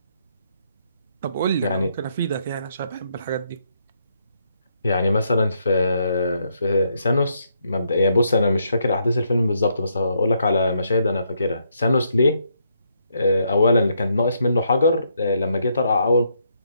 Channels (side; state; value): both; inverted; correlation -0.75